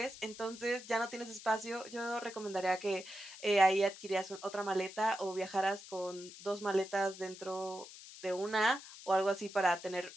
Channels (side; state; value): left; noise; hiss, 15 dB below the sound